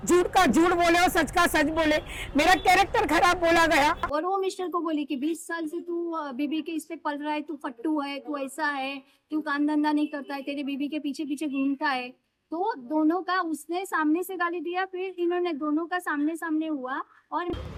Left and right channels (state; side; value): identical; both; correlation 1.00